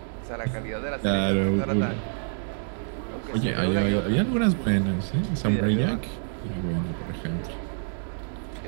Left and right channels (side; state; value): left; silent; digital silence